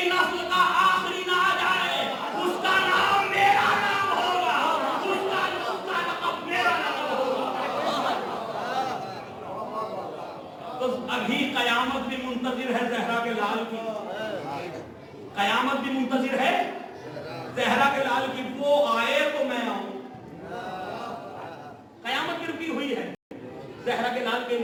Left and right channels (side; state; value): both; identical; correlation 1.00